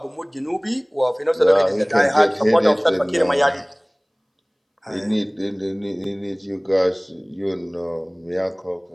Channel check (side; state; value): both; identical; correlation 1.00